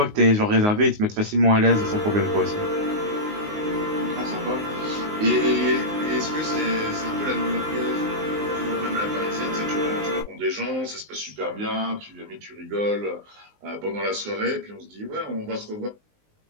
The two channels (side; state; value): left; late; 19 ms